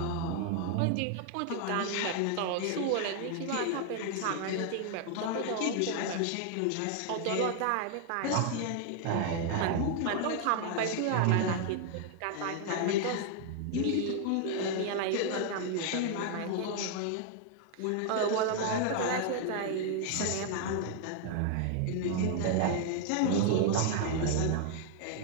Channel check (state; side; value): different; both; correlation 0.00